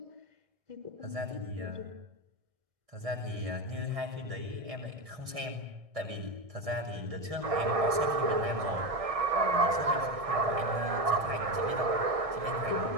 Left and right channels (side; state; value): left; late; 1.6 ms